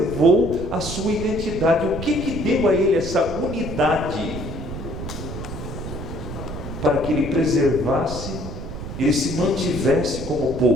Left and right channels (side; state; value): right; noise; rumble, 8 dB below the sound